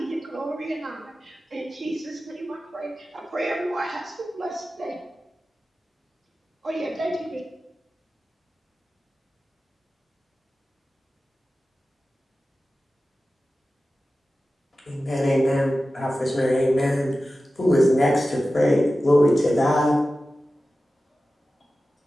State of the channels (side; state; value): both; normal; correlation 0.94